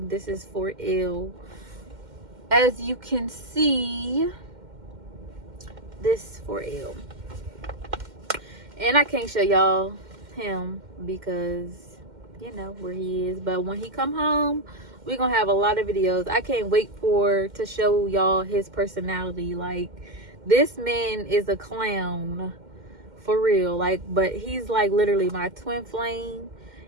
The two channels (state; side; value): late; left; 2.1 ms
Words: This is for ill. As you can see, this for ill. And I can't show y'all him because you know where he is. But when he come home, we're gonna have a lot of videos. I can't wait to show y'all his personality. Like, this man is a clown for real. Like, but he's like literally my twin flame,